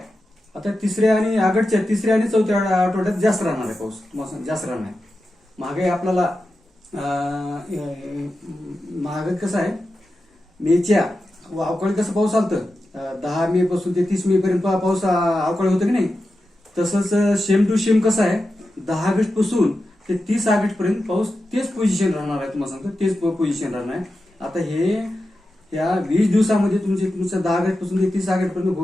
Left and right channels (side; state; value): both; normal; correlation 0.91